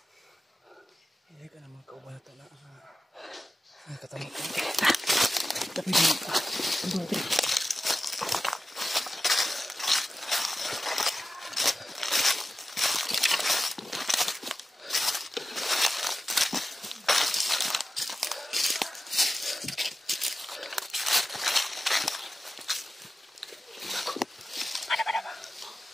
Hindi ka na mga kaubata na katamot. Tapi di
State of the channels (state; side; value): normal; both; correlation 0.93